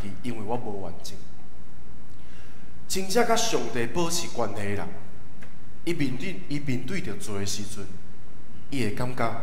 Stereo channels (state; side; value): identical; both; correlation 1.00